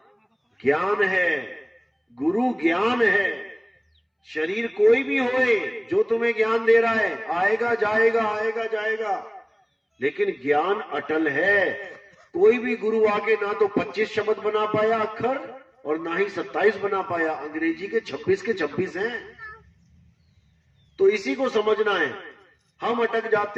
ज्ञान है, गुरु ज्ञान है। शरीर कोई भी होए जो तुम्हें ज्ञान दे रहा है, आएगा जाएगा, आएगा जाएगा, लेकिन ज्ञान अटल है। कोई भी गुरु आके ना तो 25 शब्द बना पाया अक्षर और ना ही 27 बना पाया। अंग्रेजी के 26 के 26 हैं। तो इसी को समझना है। हम अटक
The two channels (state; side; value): identical; both; correlation 1.00